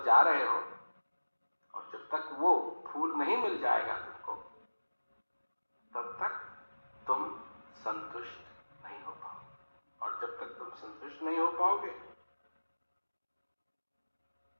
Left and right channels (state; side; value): inverted; both; correlation -1.00